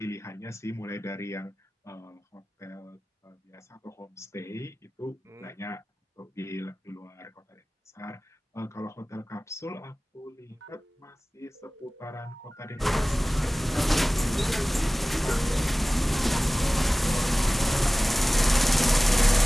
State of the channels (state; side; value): normal; both; correlation 0.98